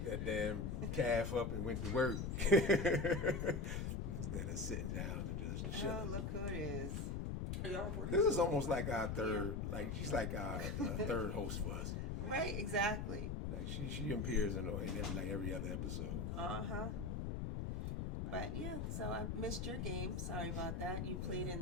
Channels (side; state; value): left; noise; rumble, 2 dB below the sound